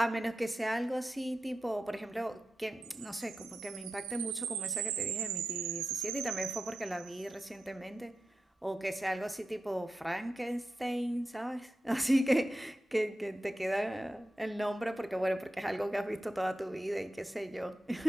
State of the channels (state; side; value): normal; both; correlation 0.91